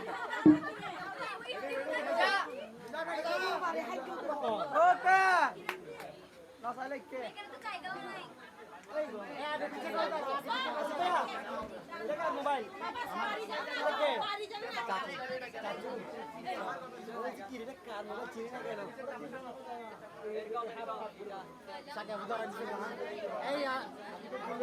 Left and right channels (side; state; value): both; identical; correlation 1.00